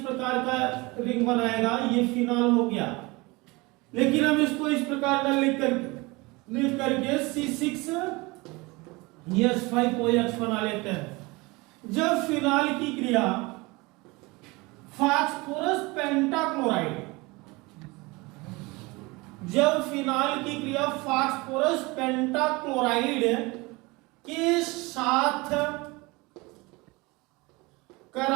का रिंग बनाएगा। ये फिनाल हो गया। लेकिन हम इसको इस प्रकार का लिख करके C6H5OH बना लेते हैं। जब फिनाल की क्रिया फास्फोरस पेंटाक्लोराइड, जब फिनाल की क्रिया फास्फोरस पेंटाक्लोराइड के साथ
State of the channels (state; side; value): quieter; left; 24.2 dB